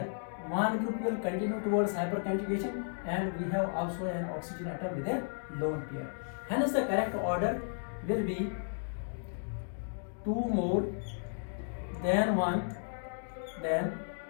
one group will continue towards hyperconjugation, and we have also an oxygen atom with a lone pair. Hence, the correct order will be 2 more than 1 than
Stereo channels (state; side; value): silent; right; digital silence